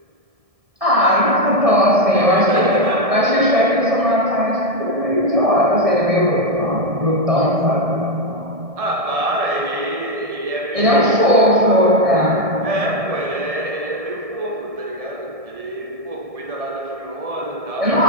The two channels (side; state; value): left; late; 1.7 ms